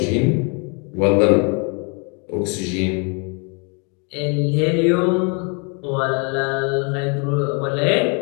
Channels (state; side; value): quieter; right; 35.1 dB